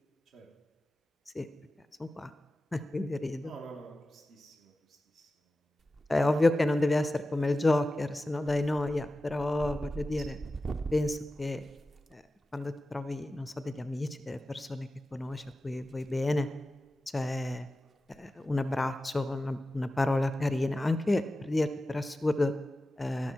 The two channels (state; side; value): normal; both; correlation 0.94